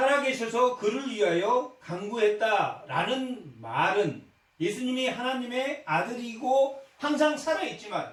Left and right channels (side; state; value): both; identical; correlation 1.00